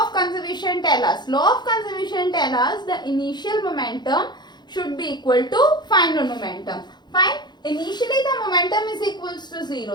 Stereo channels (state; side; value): late; right; 0.21 ms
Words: of conservation tell us? Law of conservation tell us the initial momentum should be equal to final momentum. Fine. Initially the momentum is equals to